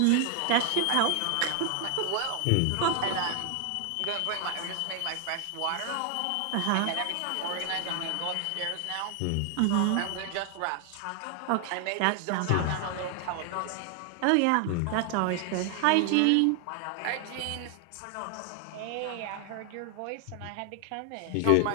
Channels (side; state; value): both; different; correlation 0.00